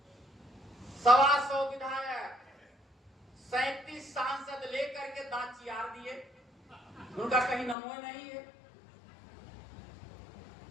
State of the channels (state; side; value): drops out; right; at 7.8 s